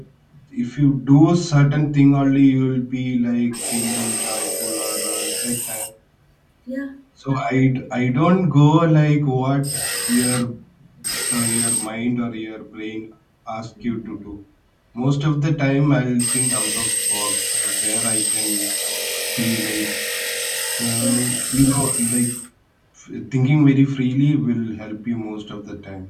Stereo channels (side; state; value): both; identical; correlation 1.00